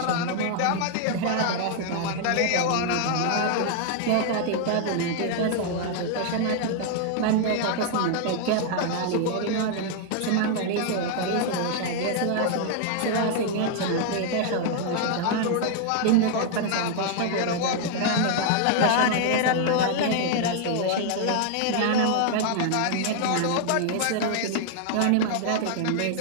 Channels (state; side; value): different; both; correlation 0.00